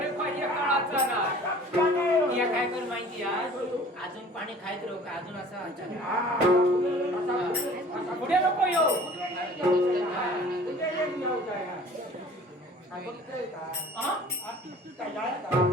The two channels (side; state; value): both; normal; correlation 0.48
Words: पाहिजे काळाचा ना या काय कर माहिती अजून पाणी खायत राहू का अजून असं पुढे नको येऊ